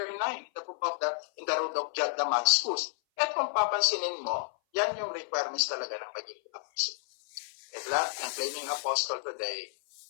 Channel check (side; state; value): right; silent; 56 dB below the other